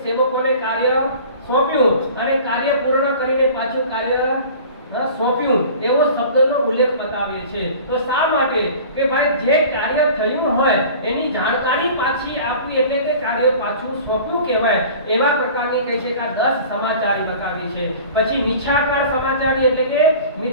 સેવકોને કાર્ય સોંપ્યું અને કાર્ય પૂર્ણ કરીને પાછું કાર્ય સોંપ્યું એવો શબ્દનો ઉલ્લેખ બતાવે છે. તો શા માટે કે ભાઈ જે કાર્ય થયું હોય એની જાણકારી પાછી આપવી એટલે કે કાર્ય પાછું સોંપ્યું કહેવાય. એવા પ્રકારની કહે છે કે આ 10 સમાચારી બતાવી છે. પછી મિથ્યાકાર સમાચારી એટલે કે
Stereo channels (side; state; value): both; inverted; correlation -0.42